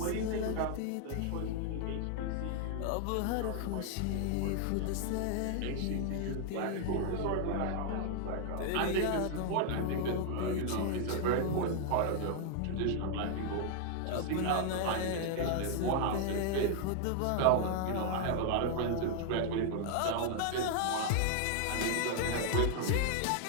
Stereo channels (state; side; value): different; both; correlation 0.00